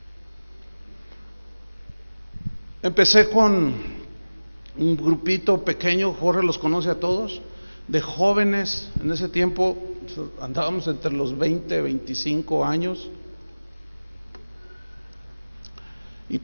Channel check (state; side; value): inverted; both; correlation -1.00